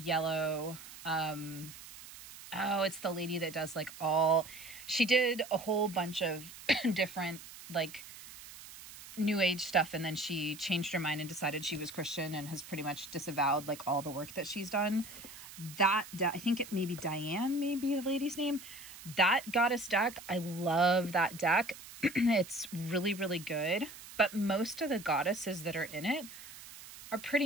Oh, it's the lady that does like she did a whole bunch of different like new age stuff, and then she changed her mind and decided she was Christian and has pretty much disavowed like all the work that she's done. I think it may be Diane, maybe the lady's name. That goddess deck, I love that deck. It's really, really good. But most of the goddesses that are in it are pretty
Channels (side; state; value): right; noise; hiss, 15 dB below the sound